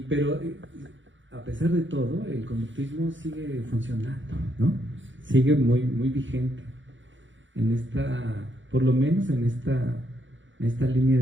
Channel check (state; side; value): late; left; 0.55 ms